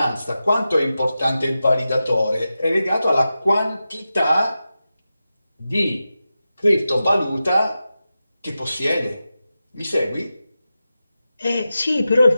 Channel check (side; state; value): both; inverted; correlation -0.92